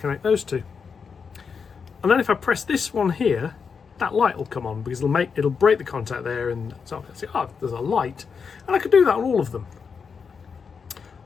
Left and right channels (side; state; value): right; quieter; 5.8 dB